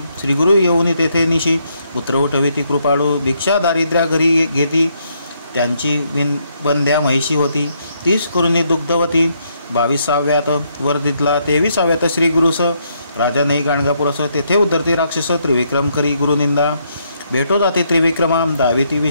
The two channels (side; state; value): both; inverted; correlation -0.74